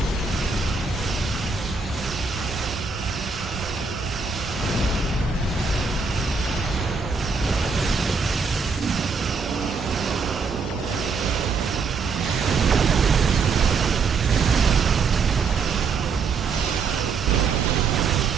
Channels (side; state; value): left; quieter; 4.9 dB